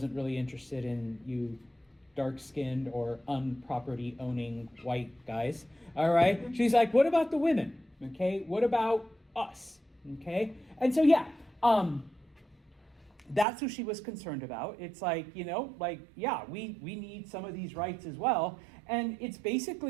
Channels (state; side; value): drops out; left; at 13.5 s